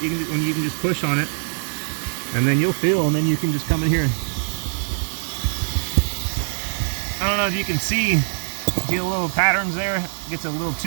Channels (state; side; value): silent; left; digital silence